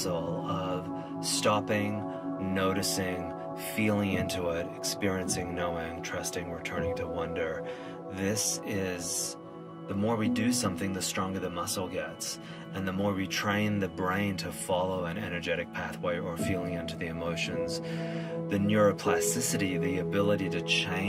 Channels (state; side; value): identical; both; correlation 1.00